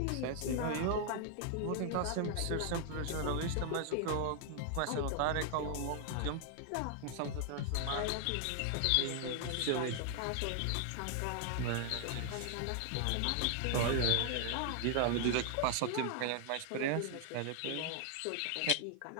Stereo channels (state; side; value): different; both; correlation 0.00